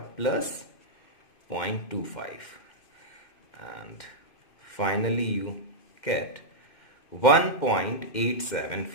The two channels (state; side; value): late; right; 2.1 ms